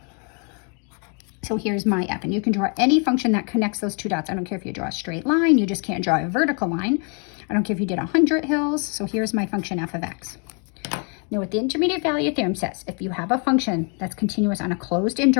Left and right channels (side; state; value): right; quieter; 38.2 dB